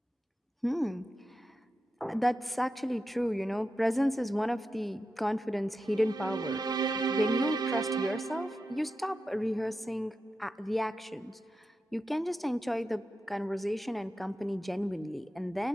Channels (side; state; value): both; normal; correlation 0.90